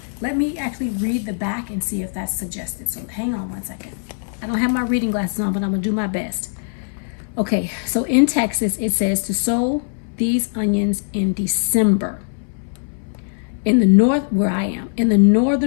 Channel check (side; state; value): right; silent; 65 dB below the other